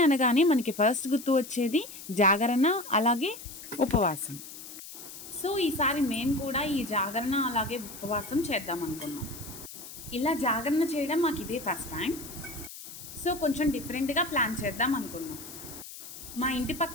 అనగానే మనకి ఫస్ట్ గుర్తు వచ్చేది జాగరణ, అలాగే ఉపవాసం. సో ఈసారి మేము కూడా ఈ జాగరణ అలాగే ఉపవాసం చేద్దాం అనుకున్నాం. ఇలా జాగరణ చేయడం మాకు ఇదే ఫస్ట్ టైం. సో కొంచెం డిఫరెంట్గా ప్లాన్ చేద్దాం అనుకున్నాం. మా ఇంటి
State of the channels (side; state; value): left; noise; hiss, 13 dB below the sound